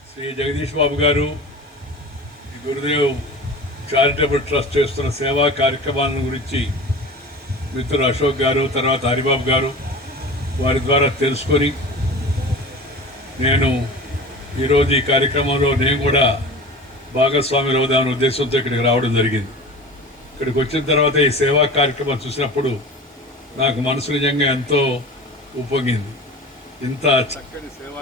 శ్రీ జగదీష్ బాబు గారు, ఈ గురుదేవ్ చారిటబుల్ ట్రస్ట్ చేస్తున్న సేవా కార్యక్రమాల గురించి మిత్రులు అశోక్ గారు, తర్వాత హరిబాబు గారు, వారి ద్వారా తెలుసుకొని నేను ఈరోజు ఈ కార్యక్రమంలో నేను కూడా భాగస్వాములు అవుదామనే ఉద్దేశంతో ఇక్కడికి రావడం జరిగింది. ఇక్కడికి వచ్చిన తర్వాత ఈ సేవా కార్యక్రమం చూసినప్పుడు నాకు మనసు నిజంగా ఎంతో ఉప్పొంగింది. ఇంత చక్కని సేవా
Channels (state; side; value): normal; both; correlation 0.35